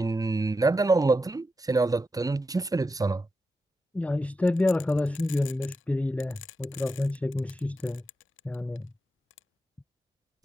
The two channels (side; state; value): both; normal; correlation 0.87